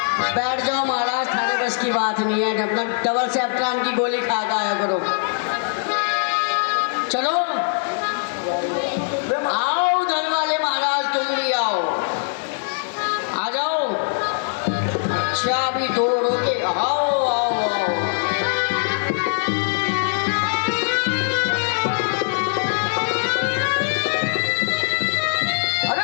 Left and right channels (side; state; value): right; silent; digital silence